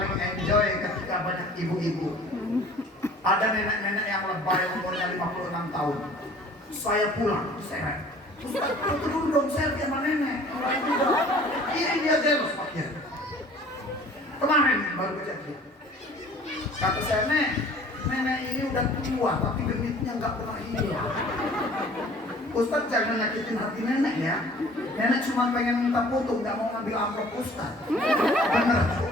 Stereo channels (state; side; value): normal; both; correlation 0.50